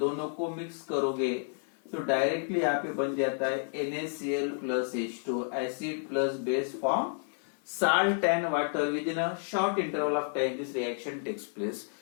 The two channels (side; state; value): right; silent; 57 dB below the other